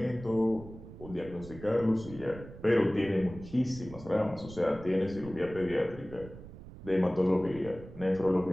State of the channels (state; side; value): noise; right; rumble, 15 dB below the sound